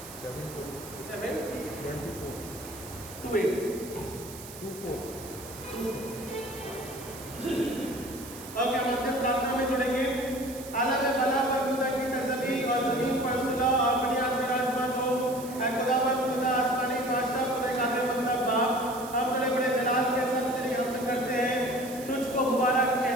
7 ओके, हम अंतिम प्रार्थना में जुड़ेंगे। आला में भला पर खुदा की तस्वीर और जमीन पर सुलह और बुनियाद में राजमा जो है खुदावंद खुदा आसमानी बादशाह खुदा कादिर मतलब बाप, हम बड़े बड़े जलाल के साथ तेरी हमद करते हैं, तुझको मुबारक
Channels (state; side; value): noise; right; hiss, 15 dB below the sound